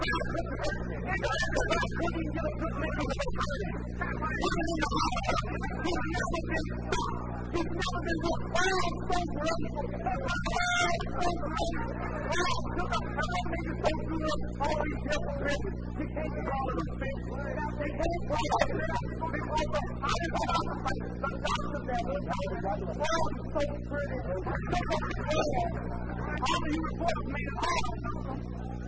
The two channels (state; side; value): identical; both; correlation 1.00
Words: couldn't hurt me. The guy couldn't even get a good lick. I'm so pretty. Put him in the hospital. He's never been stopped. He's never been wrong. Oh, I'm so great. Oh, I'm so great. Oh, I shook up. And what makes it so good, all of these hypocrites, you can't call it a fix. You can't call it a fix because I didn't stop the fight. The doctors had to stop it. Oh, I'm so pretty. I shook up the world. All of you reporters made it hard on Liston.